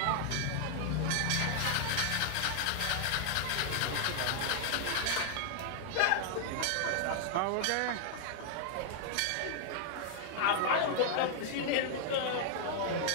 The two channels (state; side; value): different; both; correlation 0.00